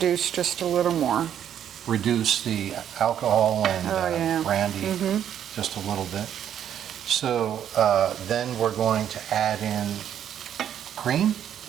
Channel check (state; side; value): quieter; left; 9.8 dB